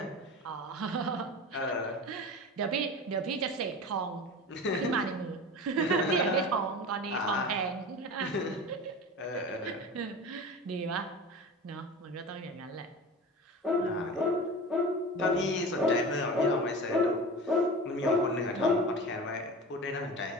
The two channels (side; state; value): both; normal; correlation 0.33